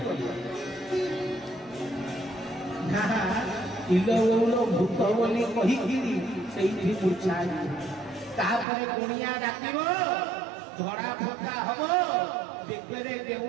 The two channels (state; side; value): drops out; left; at 8.7 s